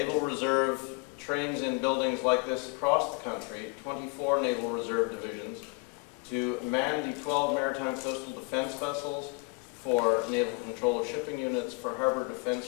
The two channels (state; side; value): quieter; right; 30.4 dB